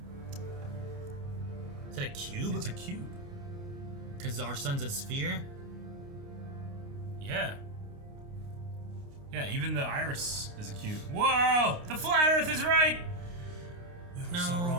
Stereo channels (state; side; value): late; left; 29 ms